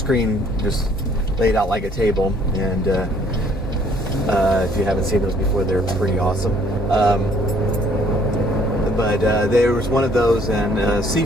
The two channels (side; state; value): both; normal; correlation 0.61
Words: just laid out like a table, and if you haven't seen those before, they're pretty awesome. But there was one of those in a